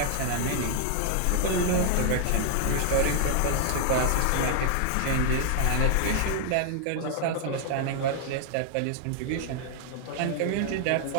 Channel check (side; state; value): both; different; correlation 0.00